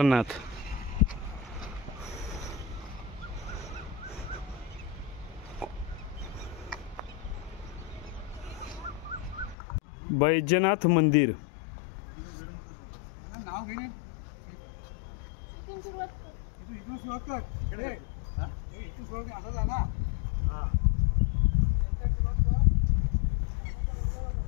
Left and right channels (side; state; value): right; drops out; at 9.6 s